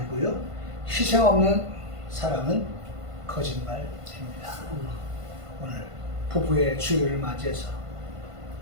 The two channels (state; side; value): late; left; 1.5 ms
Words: 희생 없는 사랑은 거짓말입니다. 오늘 부부의 주일을 맞이해서